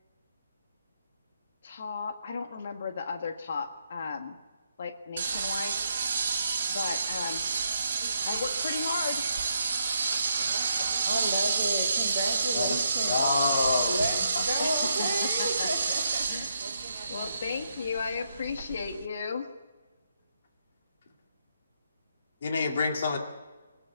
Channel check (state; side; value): inverted; both; correlation -0.77